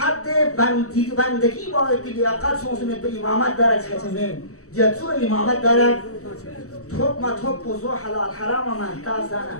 بندگی باید که لیاقت سونسونت به امامت دارد چهتمین جتو امامت دارد توب ما توب بزو حلال حرام من تازانه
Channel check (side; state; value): right; late; 0.65 ms